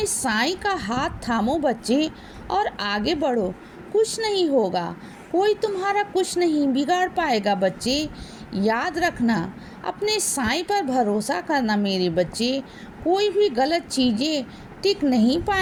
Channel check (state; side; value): identical; both; correlation 1.00